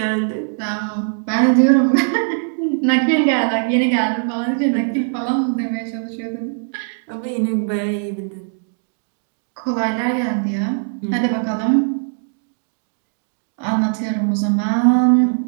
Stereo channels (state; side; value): silent; left; digital silence